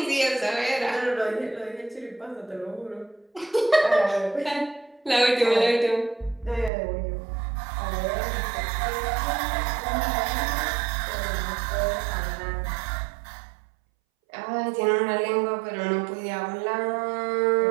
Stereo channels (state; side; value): drops out; left; at 6.7 s